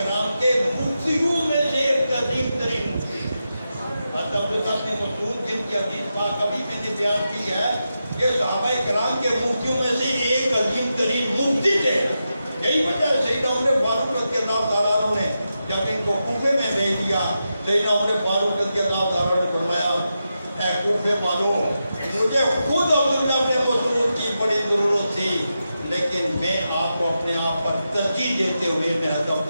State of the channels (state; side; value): inverted; both; correlation -0.89